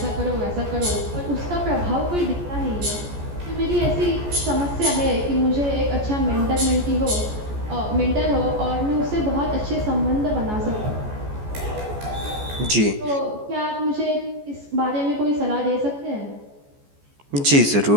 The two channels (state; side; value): late; left; 14 ms